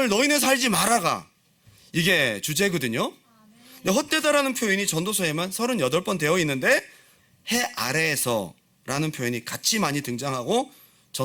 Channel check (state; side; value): identical; both; correlation 1.00